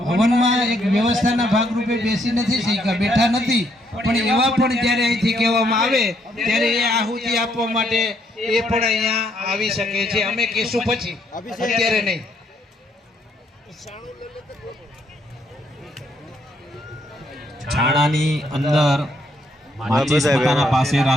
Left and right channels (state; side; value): normal; both; correlation 0.72